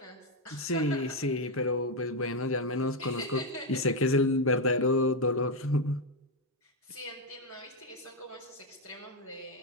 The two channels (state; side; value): normal; both; correlation 0.05